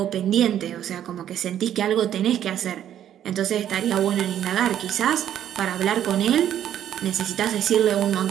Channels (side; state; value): left; quieter; 10.7 dB